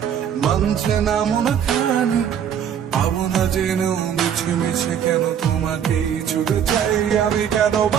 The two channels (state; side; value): quieter; left; 8.7 dB